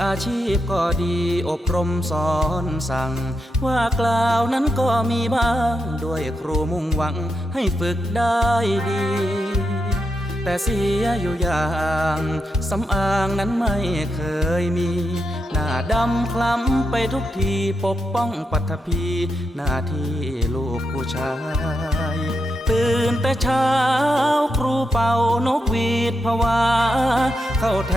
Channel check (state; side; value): normal; both; correlation 0.84